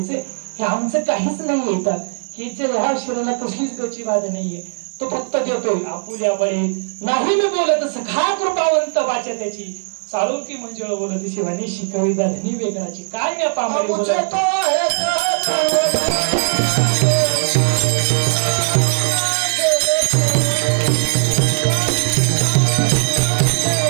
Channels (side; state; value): left; silent; digital silence